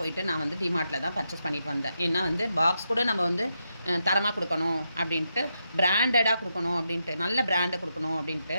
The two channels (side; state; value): both; inverted; correlation -0.84